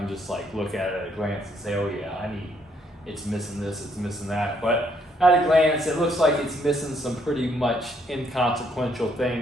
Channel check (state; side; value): normal; both; correlation 0.70